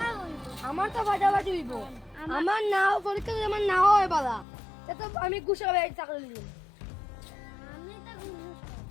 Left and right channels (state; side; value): drops out; right; at 4.5 s